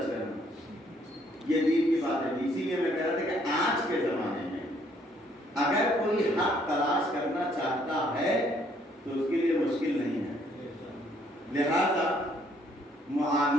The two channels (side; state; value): both; normal; correlation 0.66